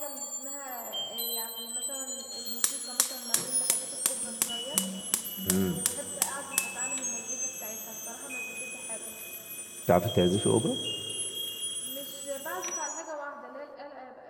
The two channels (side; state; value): both; identical; correlation 1.00